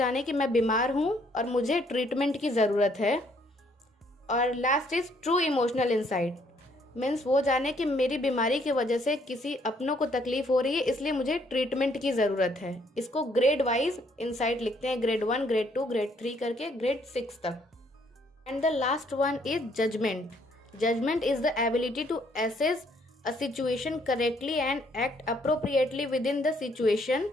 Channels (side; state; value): both; normal; correlation 0.67